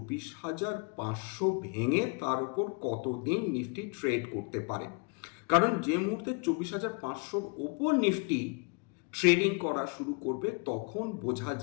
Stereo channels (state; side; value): quieter; right; 34.8 dB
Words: ভেঙে তার উপর কতদিন নিফটি ট্রেড করতে পারে। কারণ যে মুহূর্তে 24,500-র ওপর নিফটি ট্রেডিং করা শুরু করবে তখন বোঝা